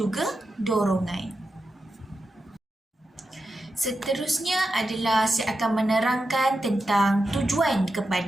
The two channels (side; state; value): both; normal; correlation 0.89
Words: dorongan. Seterusnya adalah saya akan menerangkan tentang tujuan